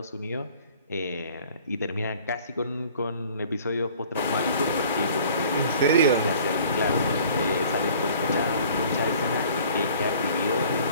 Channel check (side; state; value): both; inverted; correlation -0.50